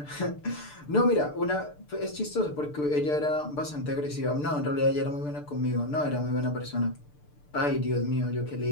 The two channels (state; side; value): late; right; 6.8 ms